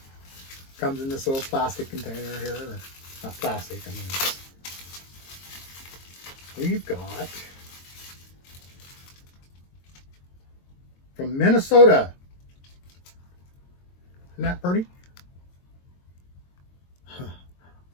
Comes in this little plastic container here. Or not plastic, I mean. We've got from Minnesota. Isn't that pretty?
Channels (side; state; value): right; late; 22 ms